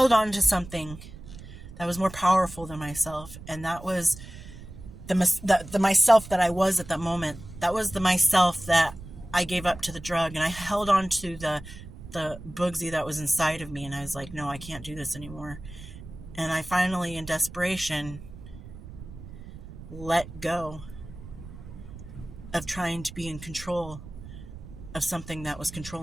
on to something that was more powerful than myself. And that was the myself that I was at that moment. That was the myself that I gave up to the drug. And I held on to the Bugsy that was inside of me. And I was like, no, I can't do this anymore. And I finally, in desperation, let go of trying to be in control of something that was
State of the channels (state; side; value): noise; right; rumble, 14 dB below the sound